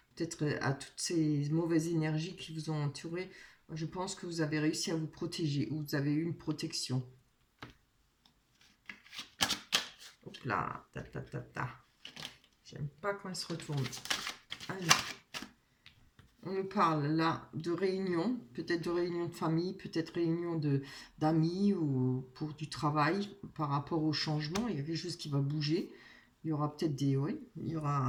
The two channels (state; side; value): identical; both; correlation 1.00